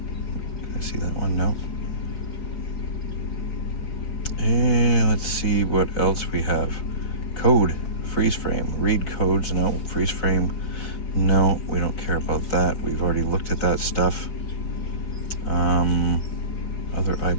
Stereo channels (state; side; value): late; right; 4.8 ms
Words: Can I see that one? No. And let's see what else we have. Code. Freeze frame. Read codes. No. Freeze frame. No, we don't care about that. We've already looked at that stuff. Other